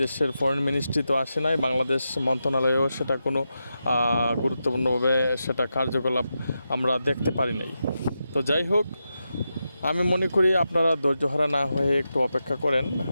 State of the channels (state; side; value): inverted; both; correlation -0.88